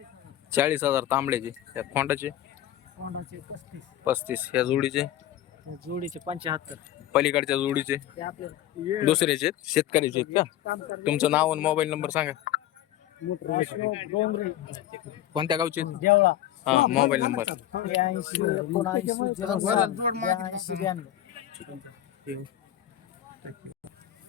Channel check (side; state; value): right; quieter; 12.4 dB